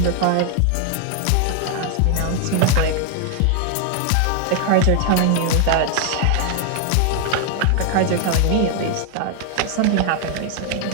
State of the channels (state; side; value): different; both; correlation 0.00